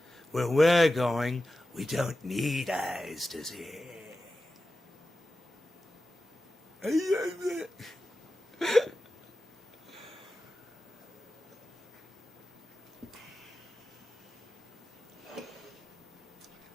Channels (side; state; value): both; normal; correlation 0.93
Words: Where we're going, we don't need eyes to see.